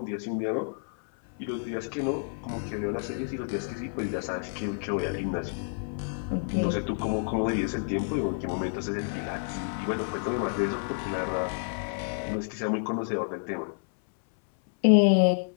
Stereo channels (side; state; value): right; silent; 58 dB below the other